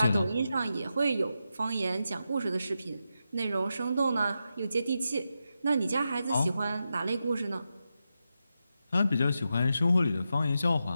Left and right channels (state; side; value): inverted; both; correlation -0.88